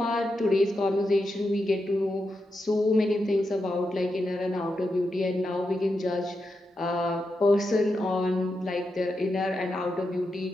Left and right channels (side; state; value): both; normal; correlation 0.87